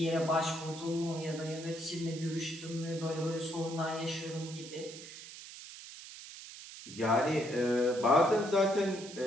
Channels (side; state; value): right; noise; hiss, 14 dB below the sound